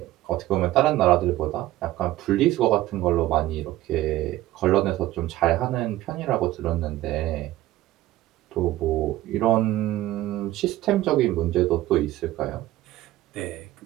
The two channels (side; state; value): left; quieter; 15.5 dB